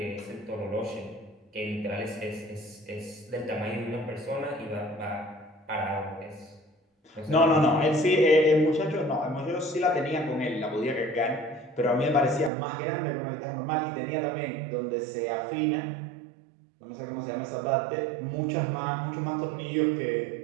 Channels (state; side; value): drops out; left; at 12.5 s